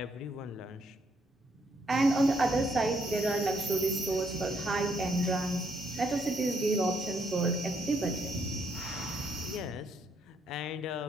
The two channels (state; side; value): normal; both; correlation 0.73